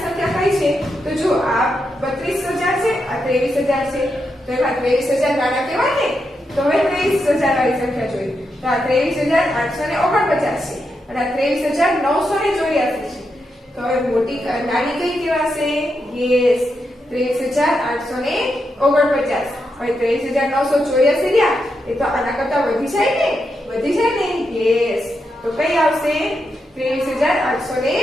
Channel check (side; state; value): both; normal; correlation 0.84